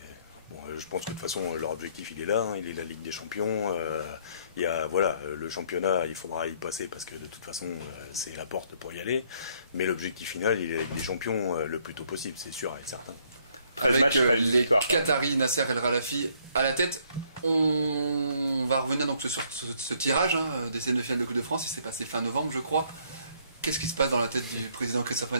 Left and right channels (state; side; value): inverted; both; correlation -0.66